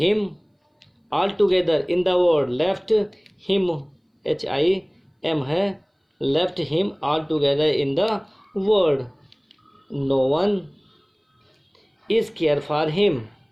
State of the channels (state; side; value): identical; both; correlation 1.00